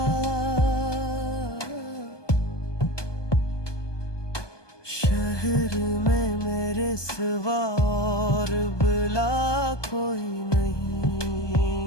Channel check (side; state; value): right; late; 1.2 ms